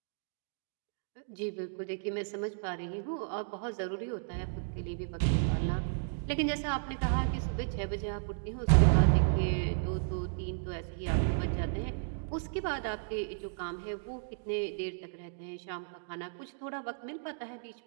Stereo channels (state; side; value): silent; left; digital silence